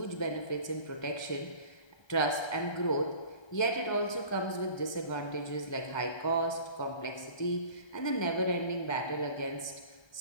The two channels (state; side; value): late; right; 1.2 ms